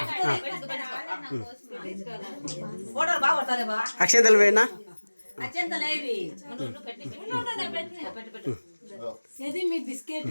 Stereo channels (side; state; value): both; inverted; correlation -1.00